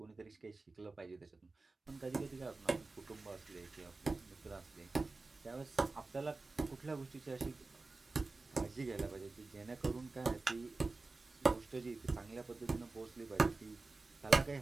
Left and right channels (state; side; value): quieter; left; 3.6 dB